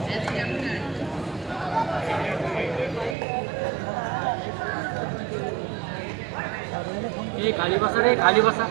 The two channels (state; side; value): drops out; left; at 3.2 s